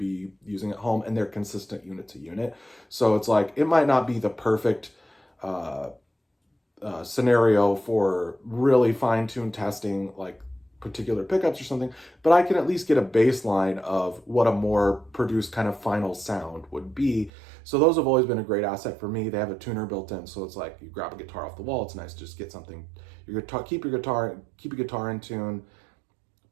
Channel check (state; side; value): drops out; left; at 17.3 s